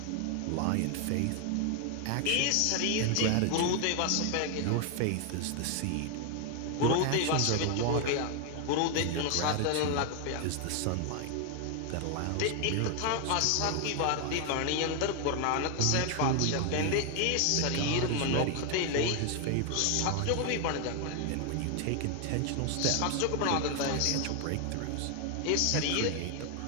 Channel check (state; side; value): different; both; correlation 0.00